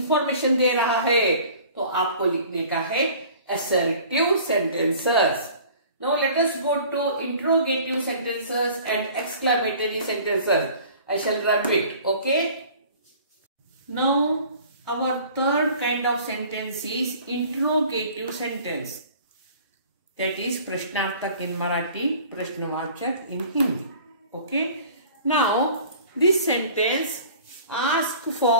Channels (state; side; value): inverted; both; correlation -0.47